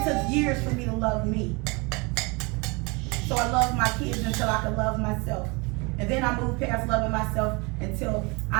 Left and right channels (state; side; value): quieter; left; 28.4 dB